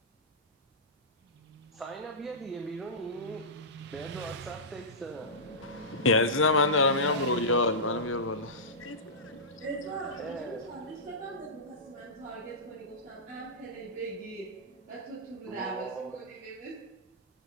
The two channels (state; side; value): normal; both; correlation -0.16